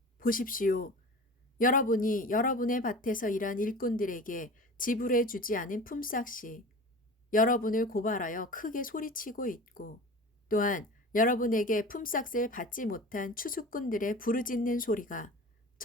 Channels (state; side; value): normal; both; correlation 0.37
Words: 보십시오. 여러분이 여러분의 밭에서 일한 일꾼들에게 지불해 주지 않은 품삯이 여러분을 고발하여 크게 소리치고 있고, 또한 여러분에게 품삯을 받지 못한 추수꾼들의 부르짖는 소리가